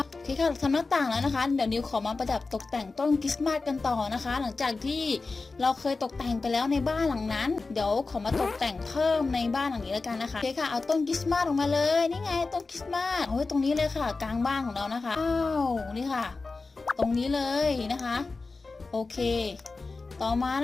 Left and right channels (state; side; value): quieter; right; 3.8 dB